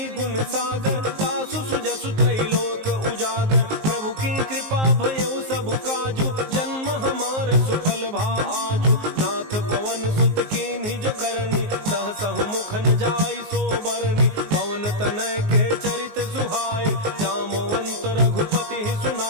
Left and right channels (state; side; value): late; left; 19 ms